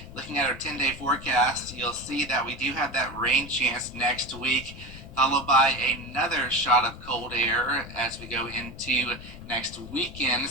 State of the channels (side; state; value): left; noise; rumble, 15 dB below the sound